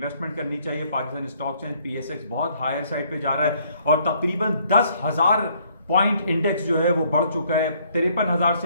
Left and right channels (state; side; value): inverted; both; correlation -0.65